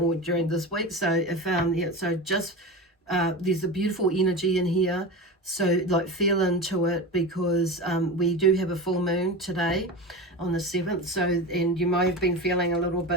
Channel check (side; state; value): both; normal; correlation 0.26